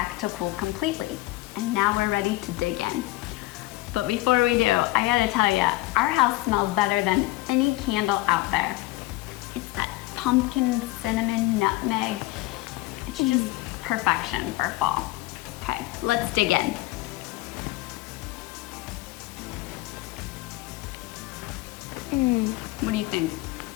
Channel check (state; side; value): quieter; right; 19.2 dB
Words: to cool completely. And now we're ready to dig in. But before we do, I gotta tell you, our house smells better than any candle out there. It's that pumpkin, cinnamon, nutmeg. It's just perfection for fall. Okay, let's dig in. What do you think?